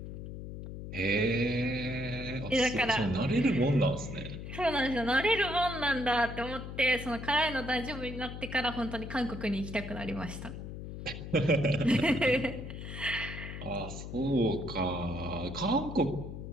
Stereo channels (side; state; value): left; noise; hum, 9 dB below the sound